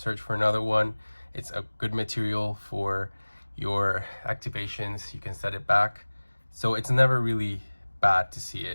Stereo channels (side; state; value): both; inverted; correlation -1.00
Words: for another one. It's a good material for your activations. You can set it back. So it's never really bad to see